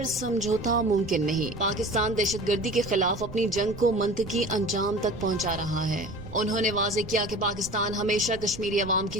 سمجھوتا ممکن نہیں۔ پاکستان دہشت گردی کے خلاف اپنی جنگ کو منطقی انجام تک پہنچا رہا ہے۔ انہوں نے واضح کیا کہ پاکستان ہمیشہ کشمیری عوام کی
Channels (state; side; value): noise; right; rumble, 14 dB below the sound